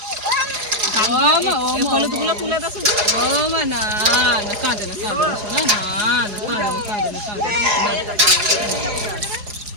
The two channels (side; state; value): left; late; 4.8 ms